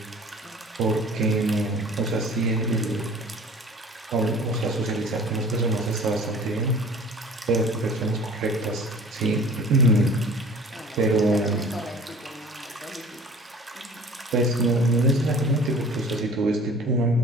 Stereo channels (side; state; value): both; normal; correlation 0.45